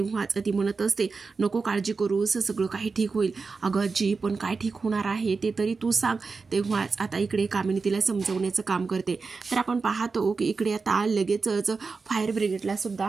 ती म्हणत असते, नको काळजी करूस, सगळं काही ठीक होईल. अगं आजी पण काय ठीक होणार आहे ते तरी तू सांग. तेव्हाच आता इकडे कामिनी तिला समजवण्याचं काम करते. तर आपण पाहतो की इकडे आता लगेचच फायर ब्रिगेडला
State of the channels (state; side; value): quieter; left; 4.5 dB